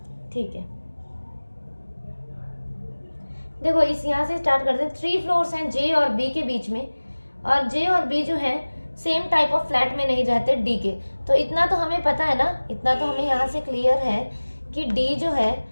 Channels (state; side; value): inverted; both; correlation -1.00